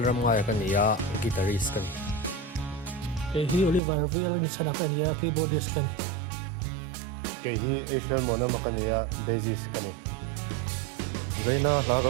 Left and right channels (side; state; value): left; drops out; at 3.8 s